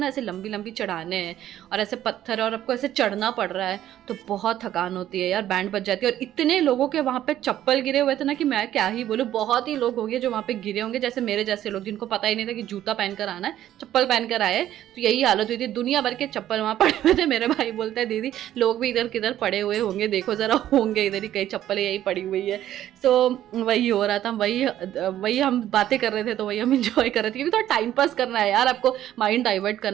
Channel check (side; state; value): left; quieter; 12.3 dB